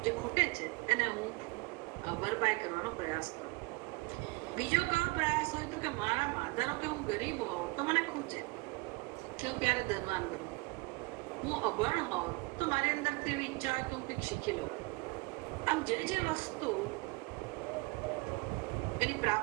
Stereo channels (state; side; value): quieter; left; 26.4 dB